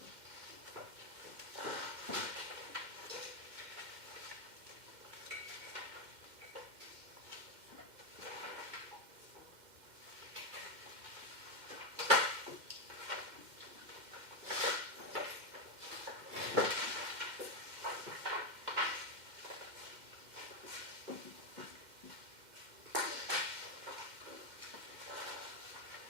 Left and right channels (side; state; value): left; late; 2.1 ms